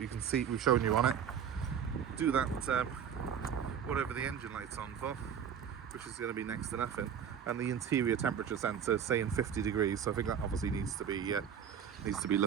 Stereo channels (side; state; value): left; quieter; 8.1 dB